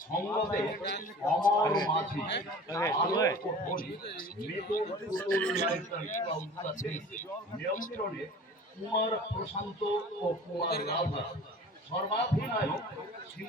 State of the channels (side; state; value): both; normal; correlation 0.42